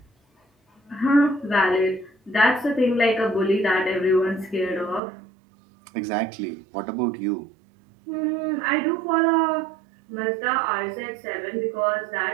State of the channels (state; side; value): drops out; left; at 5.0 s